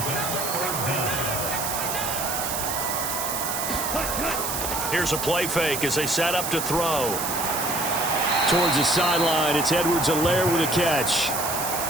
Here's a play fake as they set up to throw. Towards the sideline, it's Edwards-Helaire with a catch.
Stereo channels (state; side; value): noise; right; hiss, 3 dB below the sound